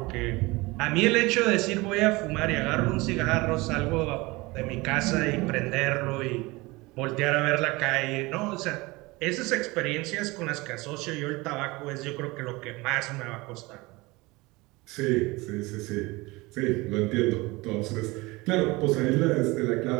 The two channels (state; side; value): quieter; left; 22.9 dB